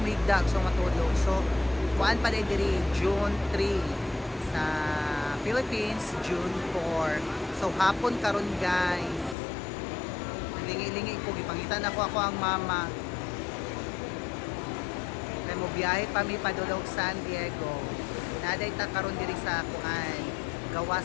so matulog. So kuan pa diri June 3 sa Philippines, June 4. So hapon karon guys. Lingi-lingi ko gipangitan ako ang mama. Kay mo biyahe pa mi padulog San Diego. Naday ta karon diri sa kuan gawa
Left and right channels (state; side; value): drops out; right; at 9.3 s